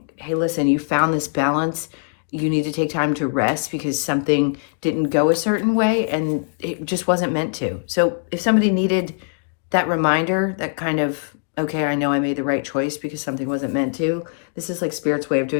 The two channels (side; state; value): right; silent; digital silence